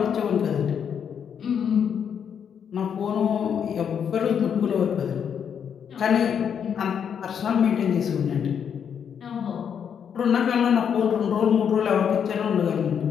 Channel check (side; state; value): right; quieter; 7.8 dB